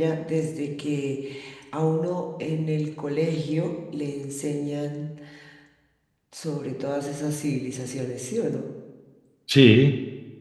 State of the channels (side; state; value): both; identical; correlation 1.00